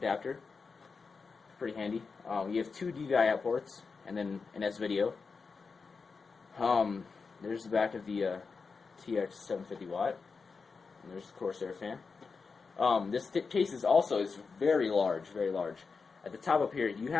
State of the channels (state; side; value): quieter; right; 4.9 dB